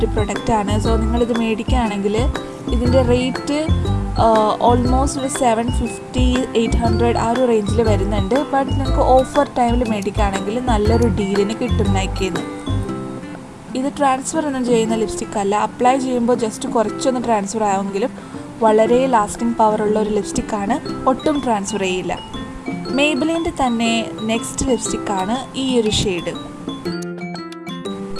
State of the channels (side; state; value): both; identical; correlation 1.00